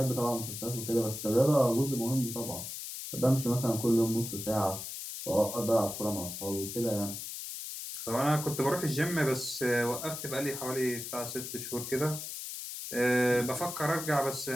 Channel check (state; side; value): noise; left; hiss, 7 dB below the sound